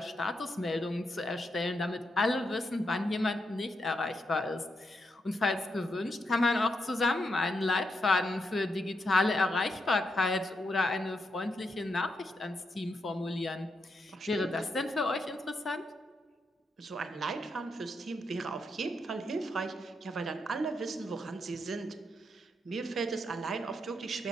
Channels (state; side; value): normal; both; correlation 0.82